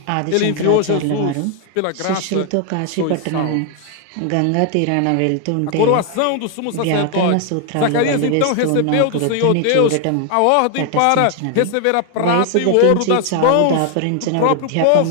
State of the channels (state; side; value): different; both; correlation 0.00